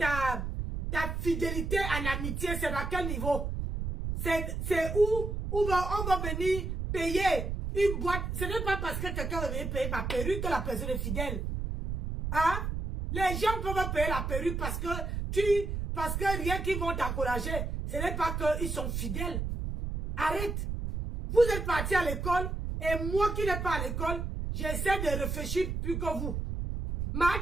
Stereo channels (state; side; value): noise; right; rumble, 3 dB below the sound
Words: fidélité en amitié, c'est à quel niveau? C'est où on va venir payer une boîte. Ce n'est pas parce que quelqu'un va venir payer ma perruque que la personne est fidèle. Hein? Les gens peuvent payer la perruque parce que rien qu'ils vont t'encourager. Ce n'est pas qu'ils sont fidèles. Arrête. Vous êtes parti à l'école et moi qui n'ai pas à l'école, j'essaie de réfléchir plus que vous. Ma